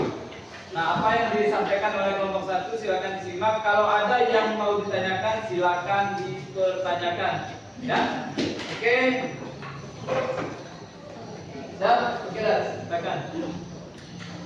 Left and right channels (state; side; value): identical; both; correlation 1.00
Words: Nah, apa yang disampaikan oleh kelompok 1 silakan disimak. Kalau ada yang mau ditanyakan silakan dipertanyakan. Ya, oke. Siap? Oke, silakan.